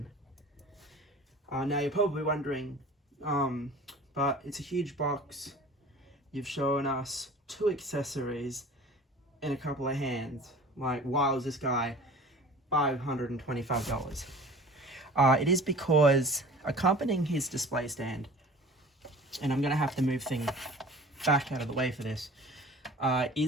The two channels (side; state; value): both; normal; correlation 0.43